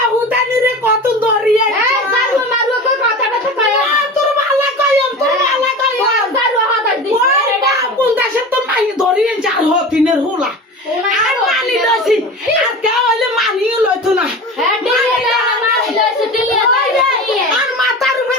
হুদানি রে কত দরিয়া এই জারু মারু কই কথাটা তো কয় তোর ভালো কইম তোর ভালো কইম জারু হাত দিস কোন দেশে তো মাই দরিয়ে যার হতিনের হুলা আর মানি লইছি আর কে হইলে মানিও লইতো না হ্যাঁ দিলে মারলে দিলে আর মাথার উপরে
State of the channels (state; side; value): normal; both; correlation 0.32